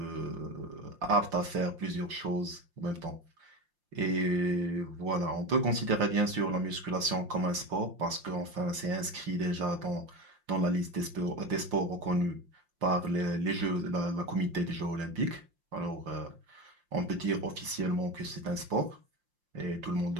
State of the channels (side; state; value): left; late; 5.7 ms